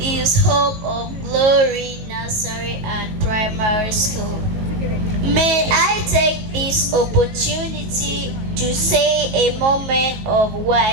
Hope of Glory Nursery and Primary School. May I take this opportunity to say a moment of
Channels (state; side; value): late; left; 19 ms